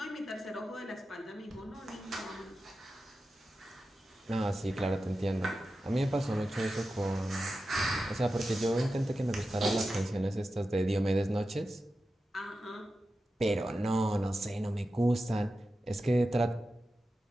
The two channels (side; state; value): both; normal; correlation 0.92